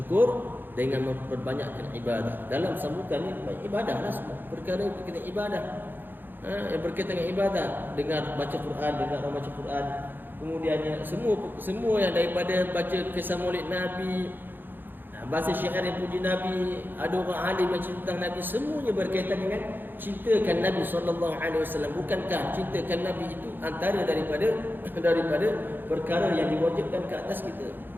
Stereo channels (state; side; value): late; left; 0.094 ms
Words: dengan memperbanyakkan ibadah. Dalam sambutan ini ibadahlah semua. Perkara berkaitan ibadah. Yang berkaitan dengan ibadah, dengar baca Quran, dengar orang baca Quran. Kemudiannya semua yang daripada baca kisah Maulid Nabi, bahasa syair yang puji Nabi, ada orang alim yang cerita tentang Nabi, semuanya berkaitan dengan cintakan Nabi SAW. Bukankah cintakan Nabi itu antara daripada perkara yang diwajibkan ke atas kita?